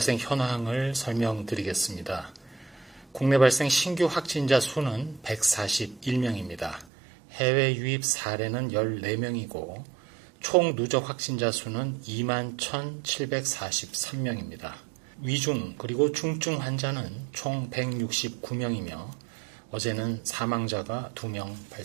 현황을 설명드리겠습니다. 국내 발생 신규 확진자 수는 141명입니다. 해외 유입 사례는 14명이고 총 누적 확진자 수는 21,743명입니다. 위중 그리고 중증 환자는 총 169명이며 어제는 사망자가 2명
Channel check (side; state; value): left; drops out; at 6.9 s